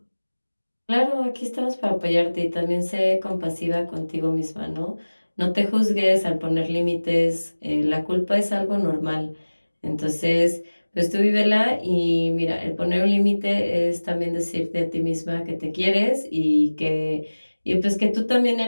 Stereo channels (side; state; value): both; inverted; correlation -1.00